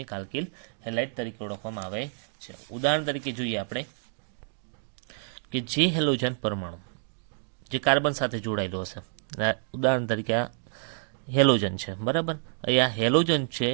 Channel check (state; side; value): silent; left; digital silence